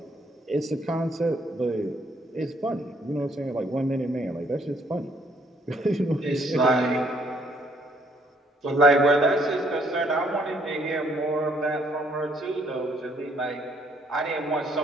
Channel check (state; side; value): normal; both; correlation 0.66